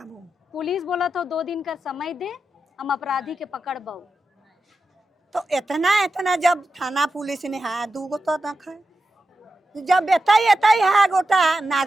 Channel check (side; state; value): both; normal; correlation 0.90